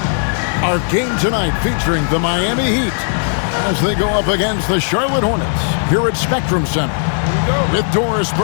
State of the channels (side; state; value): right; silent; 69 dB below the other